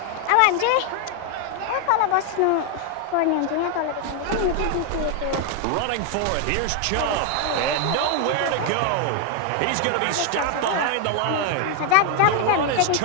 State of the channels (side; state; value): both; different; correlation 0.01